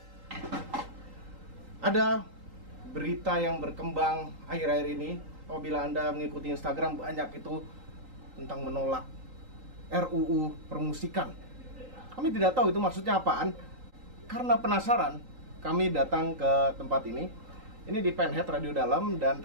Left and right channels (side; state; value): left; late; 3.8 ms